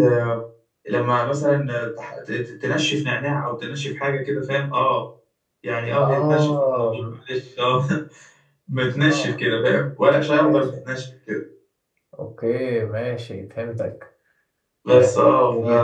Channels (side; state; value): both; identical; correlation 1.00